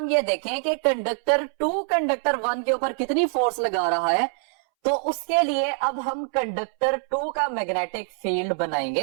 ये देखें कि कंडक्टर 2 कंडक्टर 1 के ऊपर कितनी फोर्स लगा रहा है, तो उसके लिए अब हम कंडक्टर 2 का मैग्नेटिक फील्ड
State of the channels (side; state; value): left; silent; 62 dB below the other